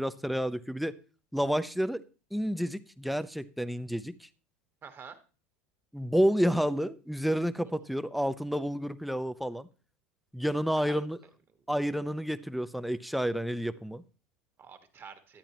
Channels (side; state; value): both; normal; correlation 0.97